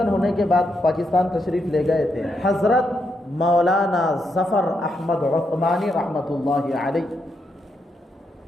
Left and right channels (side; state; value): both; normal; correlation 0.81